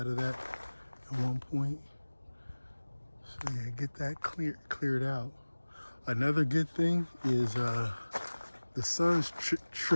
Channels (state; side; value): inverted; both; correlation -1.00